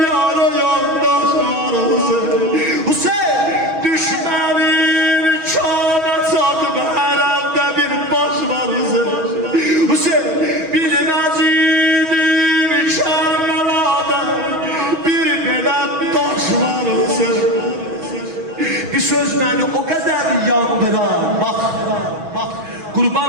yandaş arası. Hüseyin düşmənin kana çatıb hərəndə bir baş var ise. Hüseyin bilməz idim Kerbela'da bir belə daş var ise. Bir söz beni o kadar yandırar. Bak,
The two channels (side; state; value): left; late; 6.2 ms